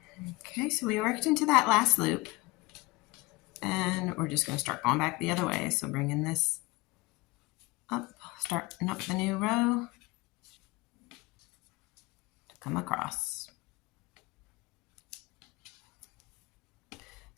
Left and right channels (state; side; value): quieter; right; 23.5 dB